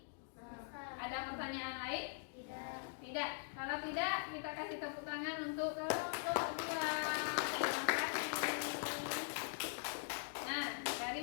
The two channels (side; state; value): right; silent; digital silence